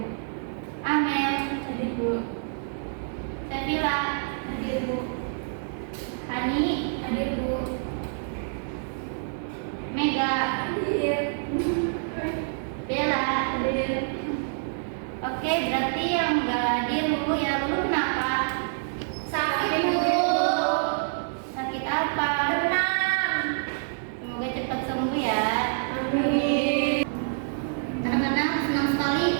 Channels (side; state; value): left; silent; digital silence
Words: Amel, Hadir, Bu. Sevilla, Hadir, Bu. Hani, Hadir, Bu. Mega, Hadir. Bella. Hadir. Oke, berarti yang nggak hadir Lulu ya. Lulu kenapa? Sakit, Bu. Sakit apa? Tenang. Semoga cepat sembuh ya. Amin. Anak-anak, senang sekali